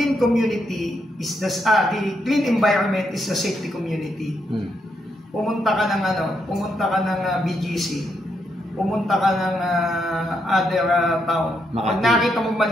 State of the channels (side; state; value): both; normal; correlation 0.79